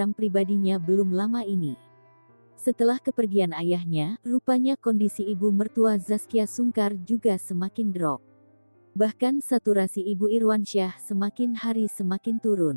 pribadinya belum lama ini. Setelah kepergian ayahnya, rupanya kondisi ibu mertua Zaskia Sungkar juga semakin drop. Bahkan saturasi ibu Irwansyah semakin hari semakin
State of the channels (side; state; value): both; inverted; correlation -1.00